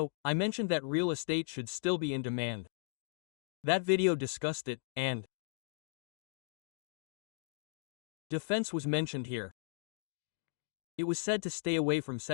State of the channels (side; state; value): right; silent; digital silence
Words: I mentioned that real estate should still be in demand. That video discussed it, and defense was mentioned here. It was said to stay away from